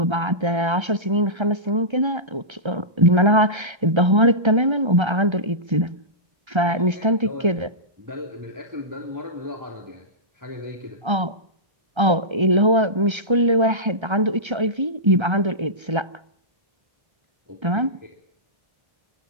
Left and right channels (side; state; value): left; late; 1.3 ms